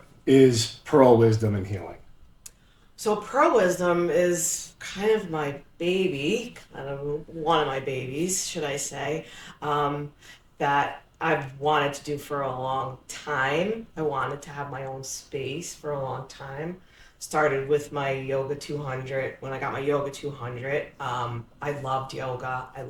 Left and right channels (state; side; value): identical; both; correlation 1.00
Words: is Pearl Wisdom and Healing? So, Pearl Wisdom is kind of my baby, kind of one of my babies, should I say, that I've wanted to do for a long time. I wanted to have my own space for a long time. Started with my Yoga 200. When I got my Yoga 200, I loved yoga. I